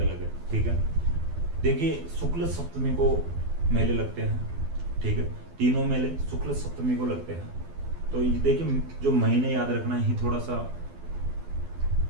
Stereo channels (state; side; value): late; left; 12 ms